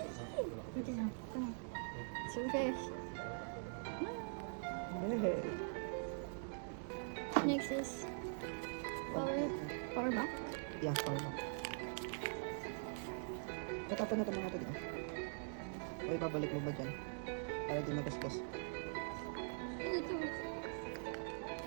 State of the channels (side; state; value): left; silent; digital silence